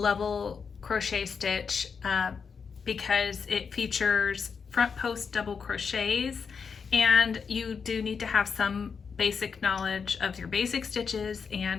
crochet stitch because it features front post double crochets, and you do need to have some basic knowledge of your basic stitches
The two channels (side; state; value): right; quieter; 5.9 dB